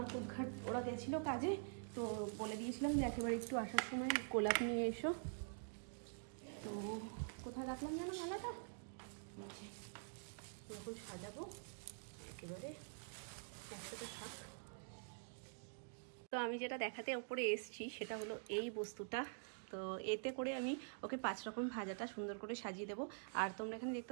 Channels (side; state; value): left; silent; digital silence